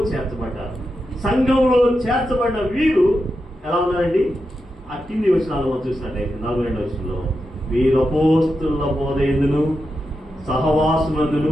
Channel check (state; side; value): normal; both; correlation 0.88